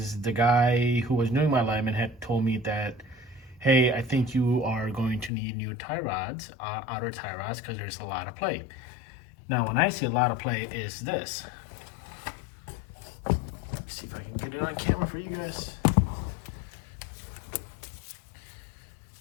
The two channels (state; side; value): drops out; right; at 5.3 s